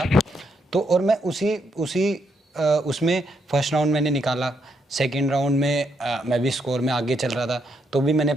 तो और मैं उसमें फर्स्ट राउंड मैंने निकाला। सेकंड राउंड में मैं भी स्कोर में आगे चल रहा था, तो भी मैंने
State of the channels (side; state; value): both; normal; correlation 0.77